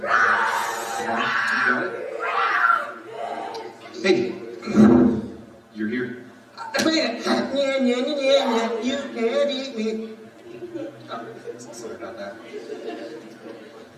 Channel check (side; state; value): both; identical; correlation 1.00